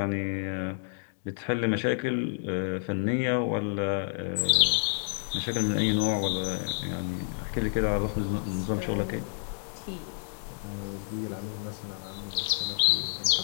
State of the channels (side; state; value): right; silent; digital silence